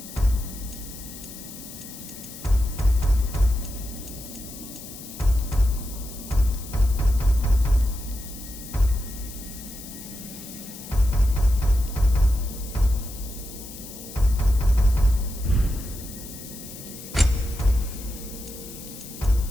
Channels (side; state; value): left; noise; hiss, 14 dB below the sound